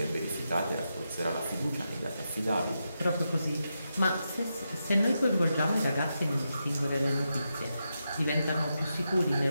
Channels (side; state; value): both; inverted; correlation -0.86